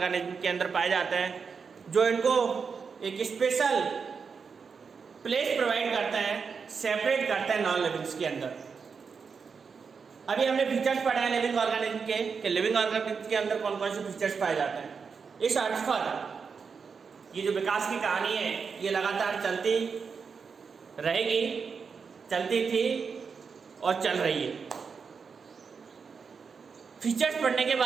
के अंदर पाए जाते हैं, जो इनको एक स्पेशल प्लेस प्रोवाइड करते हैं, सेपरेट करते हैं नॉन लिविंग्स के अंदर। अभी हमने फीचर्स पढ़े हैं लिविंग ऑर्गेनिज्म के कि लिविंग ऑर्गेनिज्म के अंदर कौन कौन से फीचर्स पाए जाते हैं। इस अर्थ पर ये जो विकास की कहानी है ये लगातार चलती रहेगी, चलती थी और चल रही है। फीचर्स पढ़ने के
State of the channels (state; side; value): quieter; left; 5.6 dB